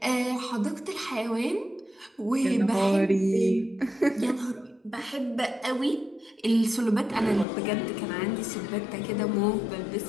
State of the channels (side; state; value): right; drops out; at 7.5 s